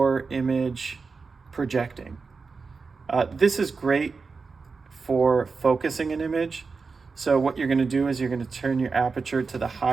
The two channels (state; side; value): quieter; left; 4.6 dB